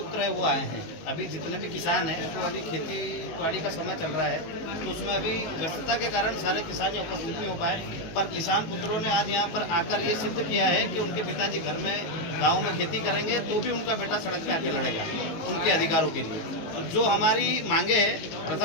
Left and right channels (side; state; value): right; late; 18 ms